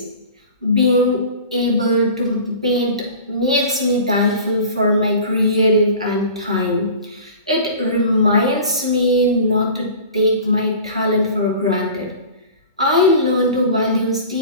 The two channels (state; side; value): inverted; both; correlation -0.40